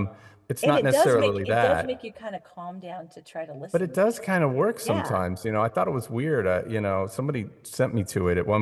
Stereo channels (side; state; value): both; identical; correlation 1.00